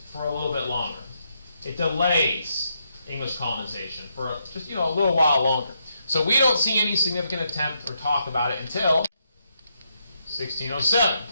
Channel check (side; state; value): both; inverted; correlation -0.79